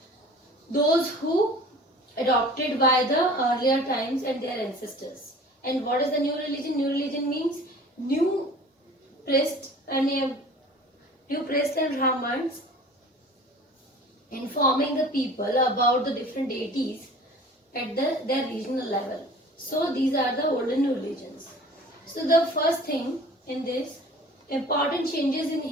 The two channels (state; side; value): normal; both; correlation 0.45